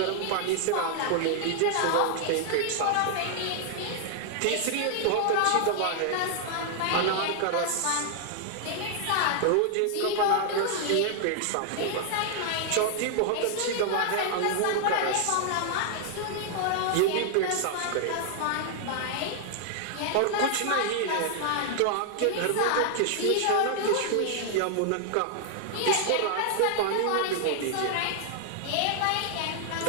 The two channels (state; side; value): different; both; correlation 0.00